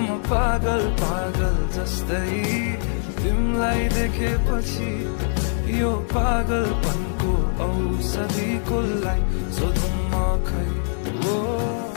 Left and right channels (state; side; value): silent; right; digital silence